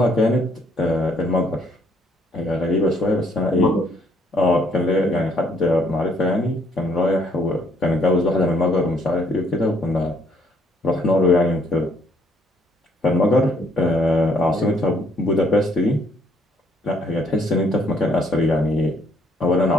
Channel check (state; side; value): normal; both; correlation 0.66